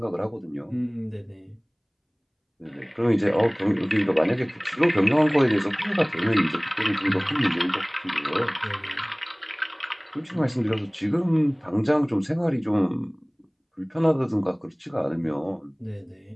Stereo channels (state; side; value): identical; both; correlation 1.00